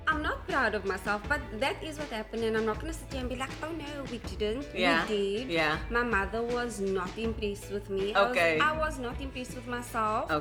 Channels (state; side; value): identical; both; correlation 1.00